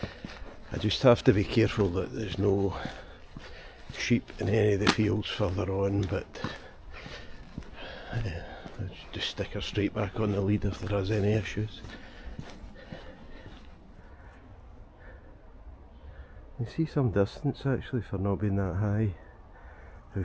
I just have to be careful that there's no sheep in any of the fields further on, but just stick her straight back on the lead if there is any issues. You see some distance actually for not being that high, how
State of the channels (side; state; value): both; identical; correlation 1.00